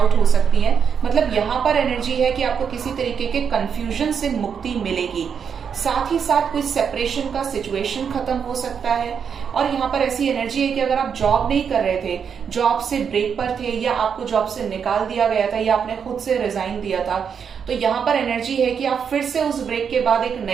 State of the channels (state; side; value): quieter; left; 7.0 dB